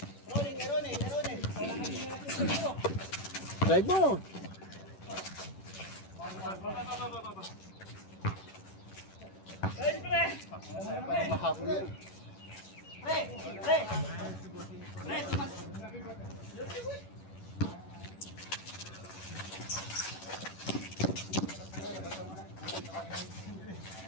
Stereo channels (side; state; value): right; late; 11 ms